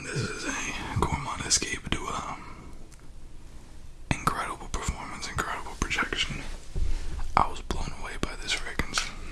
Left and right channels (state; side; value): identical; both; correlation 1.00